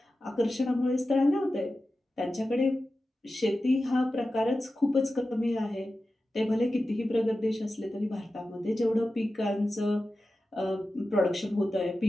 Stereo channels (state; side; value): normal; both; correlation 0.93